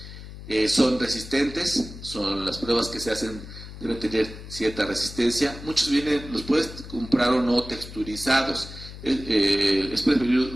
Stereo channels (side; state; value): left; noise; hum, 13 dB below the sound